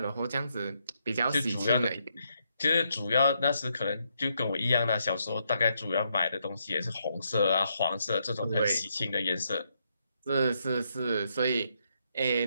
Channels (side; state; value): both; inverted; correlation -0.78